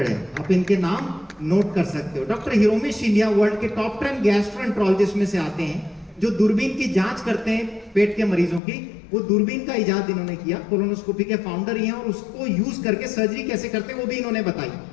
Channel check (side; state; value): right; drops out; at 8.6 s